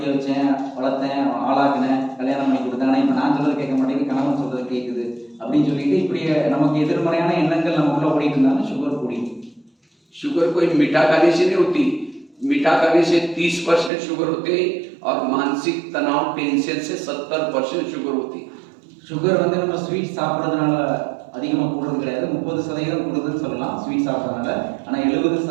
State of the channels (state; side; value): drops out; left; at 13.9 s